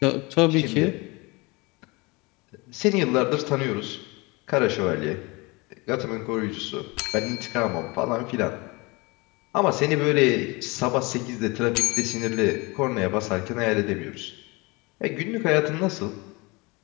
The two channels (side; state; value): right; quieter; 25.7 dB